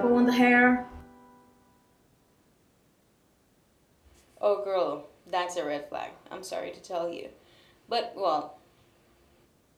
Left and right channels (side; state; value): both; identical; correlation 1.00